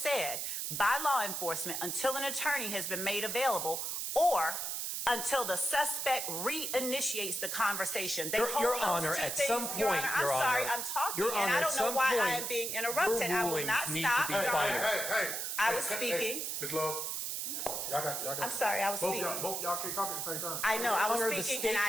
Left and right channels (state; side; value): noise; right; hiss, 3 dB below the sound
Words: by law enforcement until an attorney has been made available or until the suspect reinitiates the conversation. Your Honor, at some point, Your Honor, I'm sorry, I'm talking, Your and Honor, I at don't know some why I point, am being interrupted. I will rulings not need stop. to be Your Honor. final. I was speaking. Ms. Love, y'all got. I'm sorry, I was both speaking. Both y'all can't talk at the same time. I know, I Honor, the was speaking, and I